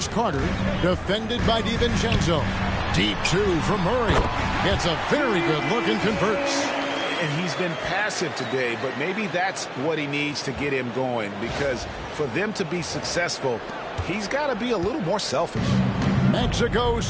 Carter, defended by DiVincenzo. Deep two from Murray. It's a very good look and converts. And he's been passive today, but maybe that's what he needs to get him going, because for them to be successful, he's got to be a little more selfish. Mexico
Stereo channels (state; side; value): identical; both; correlation 1.00